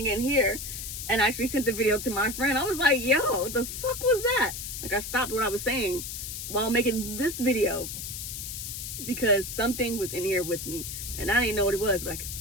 in here, and I actually sent the video to my friend. I was like, yo, what the fuck was that? Like, I stopped what I was saying while making this video because something was in here with me, and I didn't know what it was, but I could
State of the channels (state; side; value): noise; left; hiss, 7 dB below the sound